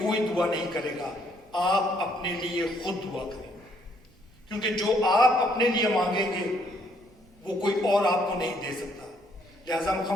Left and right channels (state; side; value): noise; right; rumble, 28 dB below the sound